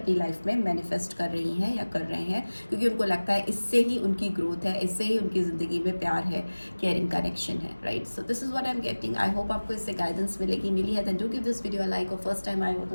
लाइफ में मैनिफेस्ट कर रही हैं या कर रहे हैं, क्योंकि उनको लगता है इससे ही उनकी ग्रोथ है, इससे ही उनकी ज़िंदगी में प्यार है, केयरिंग कनेक्शन है, right. So this is what I am getting. I hope आपको इससे गाइडेंस मिली है। Then do give this video like, और फर्स्ट टाइम आए हो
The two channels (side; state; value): both; inverted; correlation -1.00